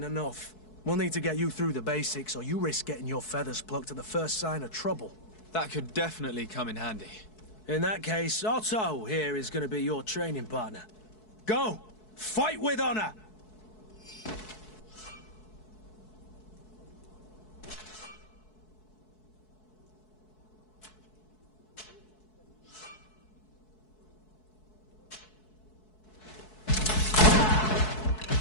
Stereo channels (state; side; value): late; right; 4.6 ms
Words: enough. We'll need to get you through the basics, or you risk getting your feathers plucked at the first sign of trouble. That could definitely come in handy. In that case, Otto here is going to be your training partner. Go! Fight with honor!